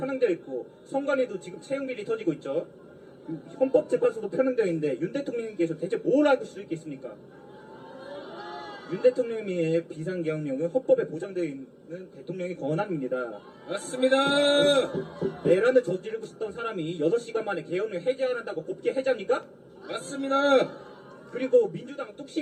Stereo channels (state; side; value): identical; both; correlation 1.00